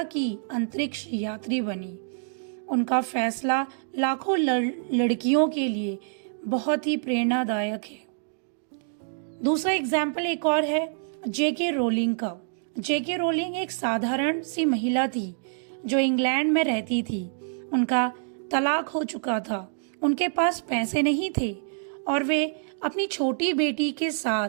की अंतरिक्ष यात्री बनी। उनका फैसला लाखों लड़कियों के लिए बहुत ही प्रेरणादायक है। दूसरा एग्जाम्पल एक और है जेके रोलिंग का। जेके रोलिंग एक साधारण सी महिला थी जो इंग्लैंड में रहती थी। उनका तलाक हो चुका था, उनके पास पैसे नहीं थे और वे अपनी छोटी बेटी के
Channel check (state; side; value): silent; left; digital silence